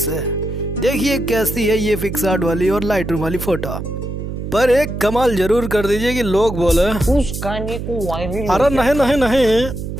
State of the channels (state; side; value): noise; right; hum, 6 dB below the sound